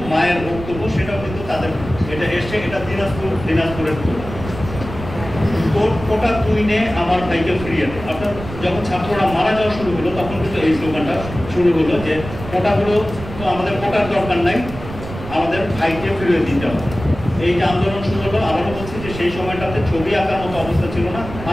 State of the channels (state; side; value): noise; right; rumble, 11 dB below the sound